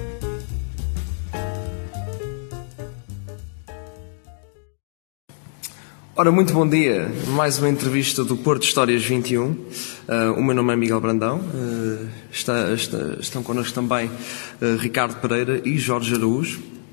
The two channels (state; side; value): silent; right; digital silence